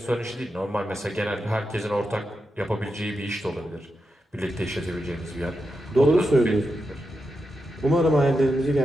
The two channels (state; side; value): normal; both; correlation 0.88